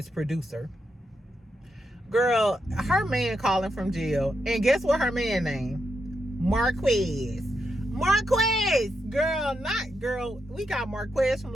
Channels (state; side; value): normal; both; correlation 0.84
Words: producer. Girl, her man calling from jail, and guess what her man name? Marquez. Marquez, girl, not girl. We got Marquez from